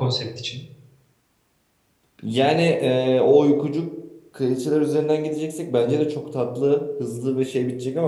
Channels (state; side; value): identical; both; correlation 1.00